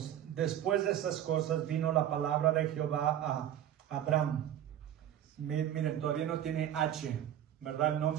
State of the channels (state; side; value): quieter; left; 10.9 dB